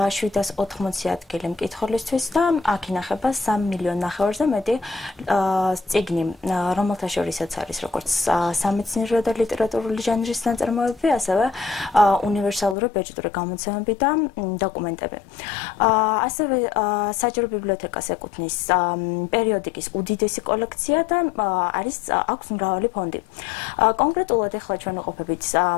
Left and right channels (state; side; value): drops out; right; at 12.8 s